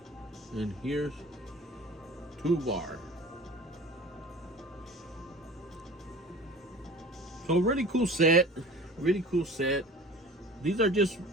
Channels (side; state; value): both; normal; correlation 0.41